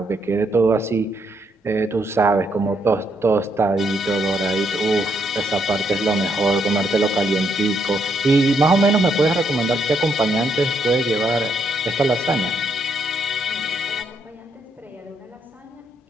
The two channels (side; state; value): both; normal; correlation 0.75